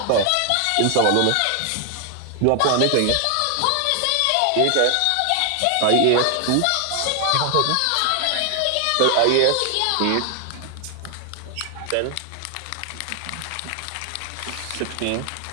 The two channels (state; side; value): different; both; correlation 0.00